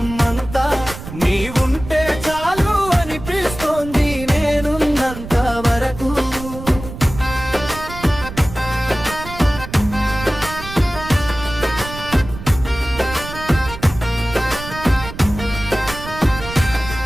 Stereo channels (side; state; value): right; noise; rumble, 12 dB below the sound